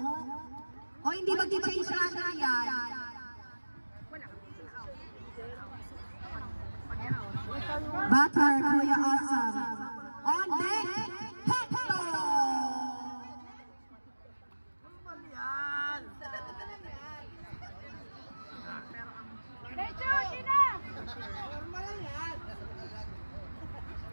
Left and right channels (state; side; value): inverted; both; correlation -1.00